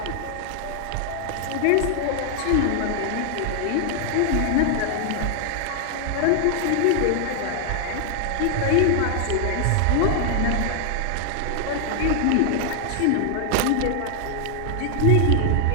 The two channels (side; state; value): both; different; correlation 0.00